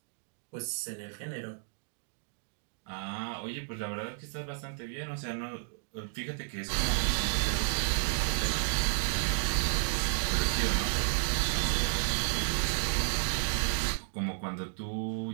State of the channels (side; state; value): left; silent; digital silence